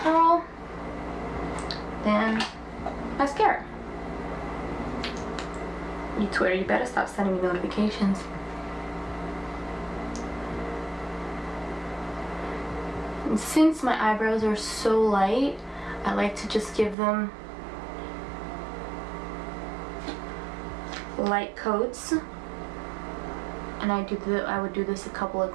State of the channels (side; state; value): left; drops out; at 16.9 s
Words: Then mascara. You Twitter, you better stop sending me notifications. And since my eyebrows are so light, I like to just give them light coats. And I would do this a couple of